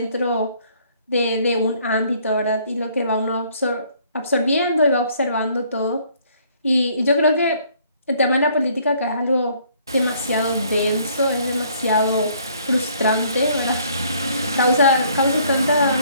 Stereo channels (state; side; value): inverted; both; correlation -0.62